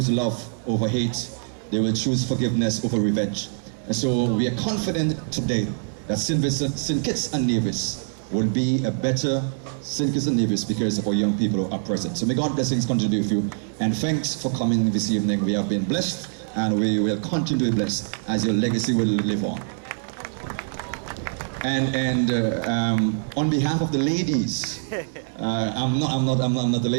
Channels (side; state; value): left; silent; 62 dB below the other